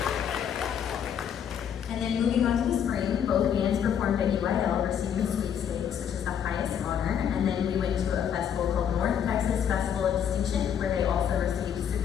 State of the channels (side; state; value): right; quieter; 8.6 dB